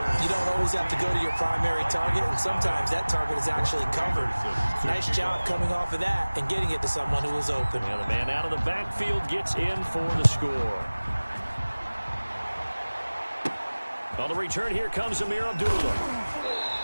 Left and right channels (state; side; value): inverted; both; correlation -1.00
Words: you don't always have to go to your primary target, and sometimes that target is actually covered. Nice job coming off of that and getting it to someone who was open. And the man out of the backfield gets in for the score. On the return, here comes Amir Abdullah.